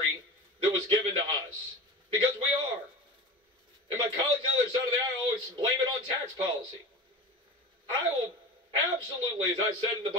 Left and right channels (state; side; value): normal; both; correlation 0.31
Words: that was given to us? Because we are. And my colleagues on the other side of the aisle always blame it on tax policy. I will absolutely, as I said in the